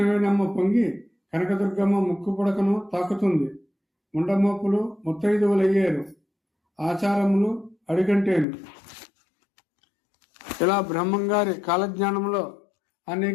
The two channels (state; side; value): drops out; right; at 8.5 s